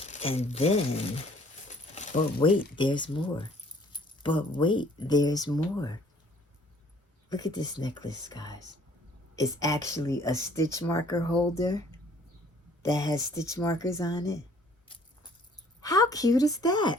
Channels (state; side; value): normal; both; correlation 0.58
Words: but wait, there's more. Look at this necklace, guys. It's actually a stitch marker holder that has stitch markers on it. How cute is that?